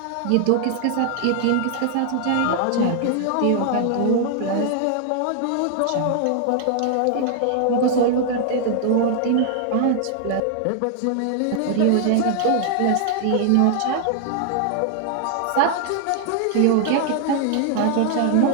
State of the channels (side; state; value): both; different; correlation 0.00